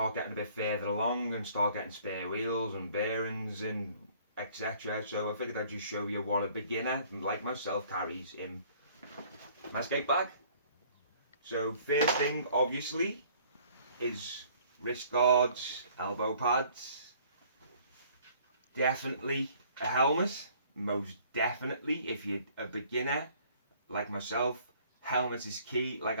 getting a bit further along and start getting spare wheels and bearings and etc. So I figured I'd just show you what a beginner like myself carries in my skate bag. So first thing obviously is wrist guards, elbow pads, definitely a helmet, most definitely. If you're a beginner like myself, helmet is key. Like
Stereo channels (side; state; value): both; inverted; correlation -0.57